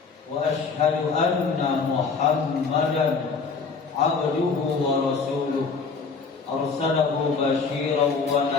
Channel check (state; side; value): quieter; right; 5.0 dB